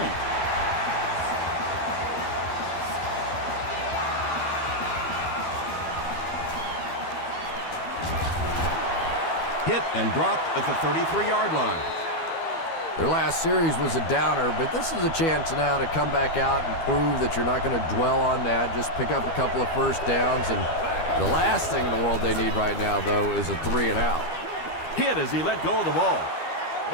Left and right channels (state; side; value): late; right; 12 ms